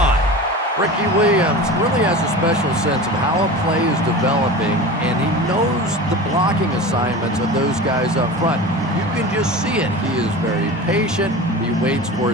Ricky Williams really has a special sense of how a play is developing, and he knows the blocking assignments of those guys up front. You can just see it. He is very patient. He waits for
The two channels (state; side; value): normal; both; correlation 0.32